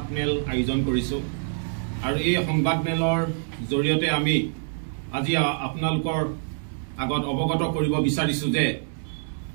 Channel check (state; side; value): silent; left; digital silence